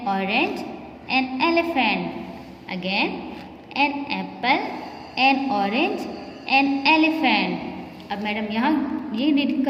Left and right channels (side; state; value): both; identical; correlation 1.00